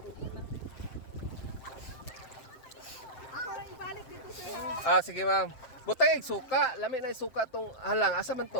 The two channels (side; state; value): right; late; 7.7 ms